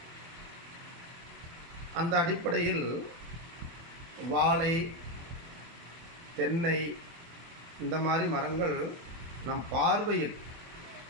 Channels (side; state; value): left; late; 24 ms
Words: அந்த அடிப்படையில் வாழை, தென்னை இந்த மாதிரி மரங்கள் நம் பார்வையில்,